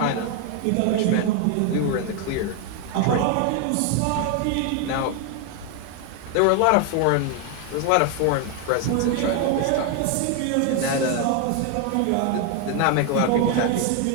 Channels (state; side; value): different; both; correlation 0.01